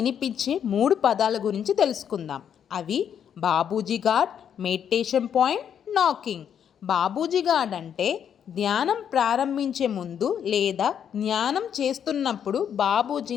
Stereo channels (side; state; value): right; quieter; 8.6 dB